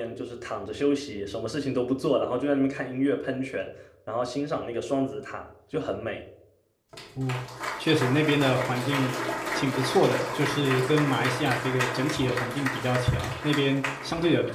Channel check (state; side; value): identical; both; correlation 1.00